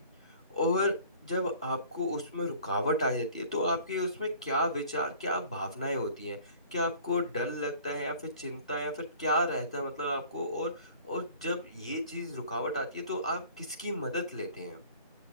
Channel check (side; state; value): both; inverted; correlation -0.49